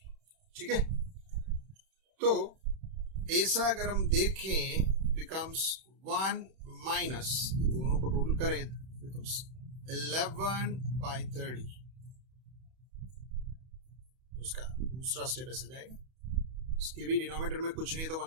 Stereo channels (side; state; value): left; late; 31 ms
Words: ठीक है, तो ऐसा अगर हम देखें बिकम्स 1 माइनस, दोनों को टोटल करें बिकम्स 11/30. उसका दूसरा स्टेप ऐसे जाएगा. उसके भी डिनोमिनेटर में कुछ नहीं है तो